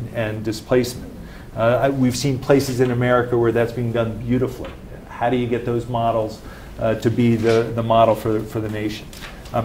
and displacement? We've seen places in America where that's being done beautifully. How do you get those models to be the model for the nation?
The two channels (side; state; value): both; identical; correlation 1.00